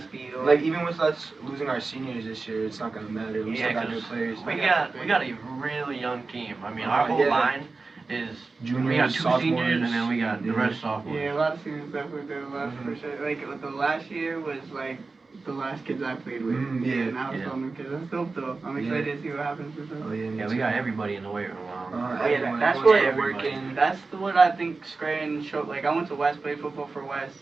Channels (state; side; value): quieter; left; 3.9 dB